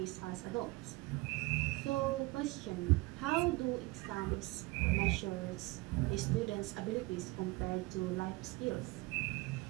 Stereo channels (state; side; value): quieter; left; 22.6 dB